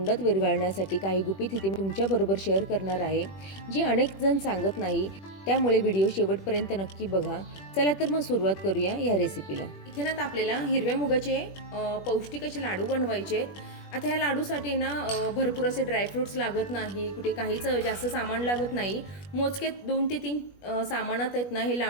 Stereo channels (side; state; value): right; late; 21 ms